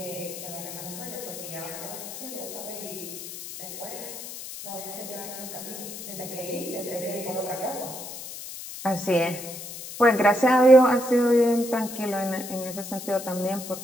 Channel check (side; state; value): left; noise; hiss, 10 dB below the sound